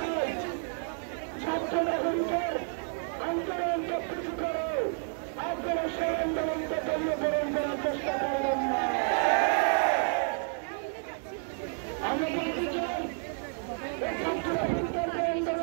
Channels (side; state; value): left; silent; 57 dB below the other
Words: ছাত্র নাগরিকের আন্দোলনকে পিছু করে আপনারা সেই আন্দোলনকে দলীয়করণ করার চেষ্টা করবেন না। আমরা বলতে চাই ছাত্র নাগরিকের যে